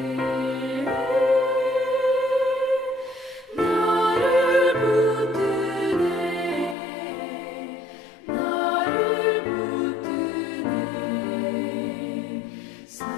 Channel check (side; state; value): right; drops out; at 6.8 s